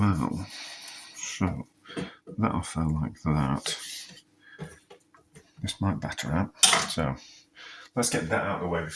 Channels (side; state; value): both; identical; correlation 1.00